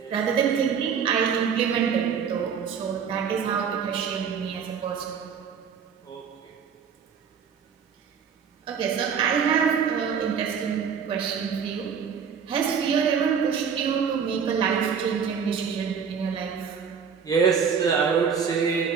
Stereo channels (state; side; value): quieter; left; 6.8 dB